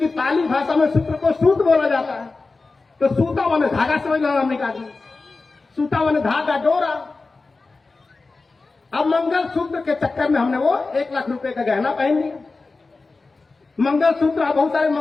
पाली भाषा में सूत्र को सूत बोला जाता है, तो सूता माने धागा समझ लो, हमने कहा सूता माने धागा, डोरा। अब मंगल सूत्र के चक्कर में हमने वो 1 लाख रुपए का गहना पहन लिया। मंगल सूत्र, बहुत सारे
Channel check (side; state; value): right; quieter; 3.8 dB